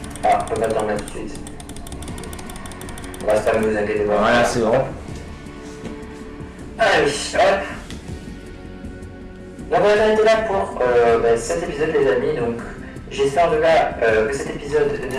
Ah, on va pas dormir tout de suite. On va se faire, ne vous inquiétez pas. Voilà, c'est bon. Allez, hop. Donc on va s'arrêter là pour cet épisode, les amis. Donc j'espère en tout cas que cet épisode, le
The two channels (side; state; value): both; identical; correlation 1.00